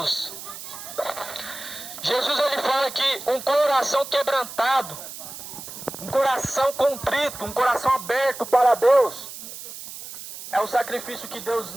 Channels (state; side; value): noise; right; hiss, 12 dB below the sound